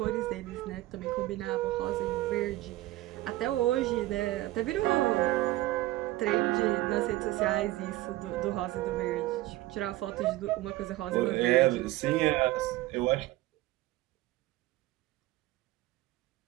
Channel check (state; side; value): quieter; left; 17.3 dB